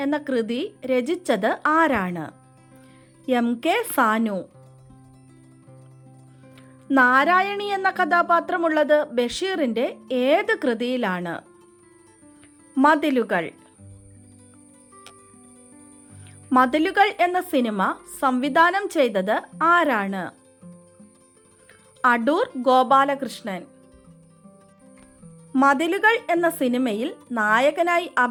എന്ന കൃതി രചിച്ചത് ആരാണ്? MK സാനു. നാരായണി എന്ന കഥാപാത്രമുള്ളത് ബഷീറിൻ്റെ ഏത് കൃതിയിലാണ്? മതിലുകൾ. മതിലുകൾ എന്ന സിനിമ സംവിധാനം ചെയ്തത് ആരാണ്? അടൂർ ഗോപാലകൃഷ്ണൻ. മതിലുകൾ എന്ന സിനിമയിൽ നായകനായി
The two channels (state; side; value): identical; both; correlation 1.00